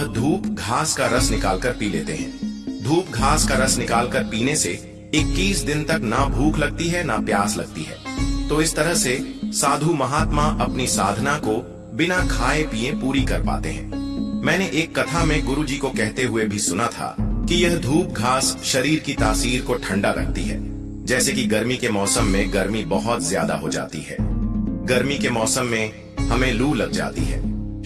धूप घास का रस निकालकर पी लेते हैं। धूप घास का रस निकालकर पीने से 21 दिन तक ना भूख लगती है ना प्यास लगती है। तो इस तरह से साधु महात्मा अपनी साधना को बिना खाए पिए पूरी कर पाते हैं। मैंने एक कथा में गुरुजी को कहते हुए भी सुना था कि यह धूप घास शरीर की तासीर को ठंडा रखती है। जैसे कि गर्मी के मौसम में गर्मी बहुत ज्यादा हो जाती है। गर्मी के मौसम में हमें लू लग जाती है,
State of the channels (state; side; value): identical; both; correlation 1.00